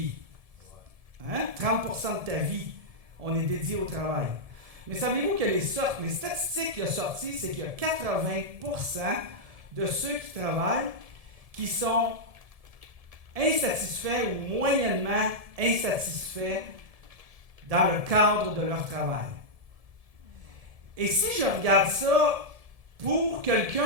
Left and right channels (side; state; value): left; late; 1.7 ms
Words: Hein? 30% de ta vie, on est dédié au travail. Mais savez-vous que les statistiques qui ont sorti, c'est qu'il y a 80% de ceux qui travaillent qui sont insatisfaits ou moyennement insatisfaits dans le cadre de leur travail. Et si je regarde ça pour